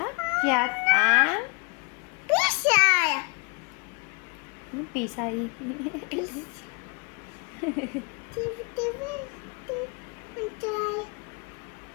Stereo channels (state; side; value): quieter; right; 31.0 dB